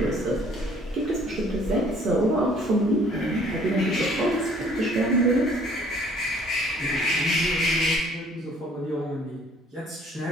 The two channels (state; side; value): normal; both; correlation 0.58